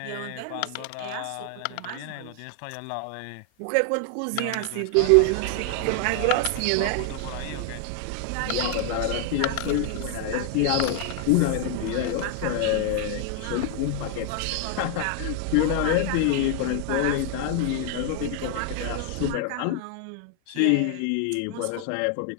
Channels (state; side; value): different; both; correlation 0.00